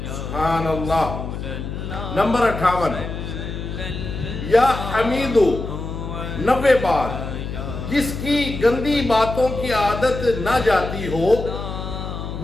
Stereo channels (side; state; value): left; noise; hum, 6 dB below the sound